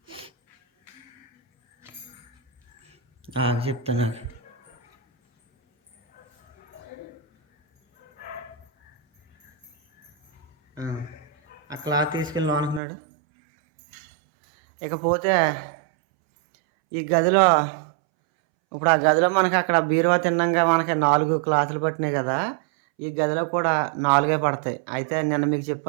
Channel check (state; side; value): drops out; left; at 12.8 s